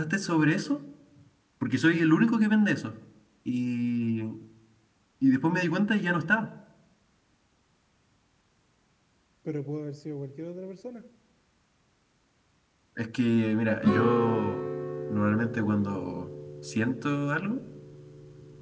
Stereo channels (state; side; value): identical; both; correlation 1.00